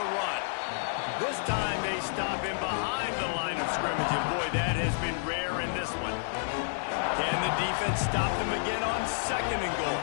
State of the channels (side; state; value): right; silent; digital silence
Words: run. This time they stop him behind the line of scrimmage, and boy, that has been rare in this one. Can the defense stop them again on second and goal?